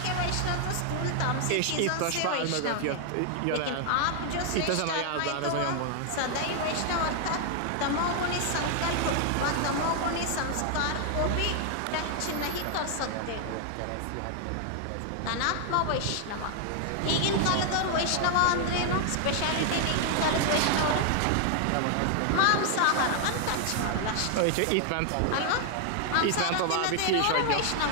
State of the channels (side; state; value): both; different; correlation 0.00